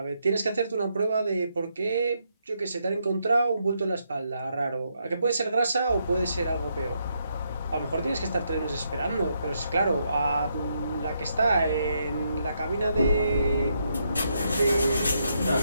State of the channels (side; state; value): both; inverted; correlation -0.78